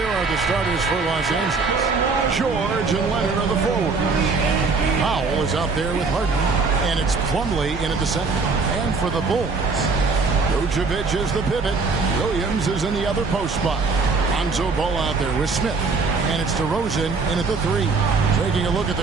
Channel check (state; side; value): quieter; left; 4.3 dB